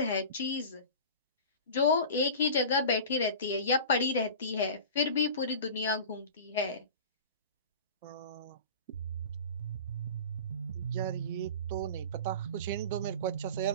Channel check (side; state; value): both; inverted; correlation -0.36